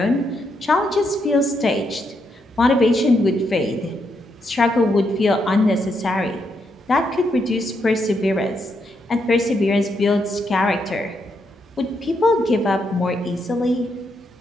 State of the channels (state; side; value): normal; both; correlation 0.79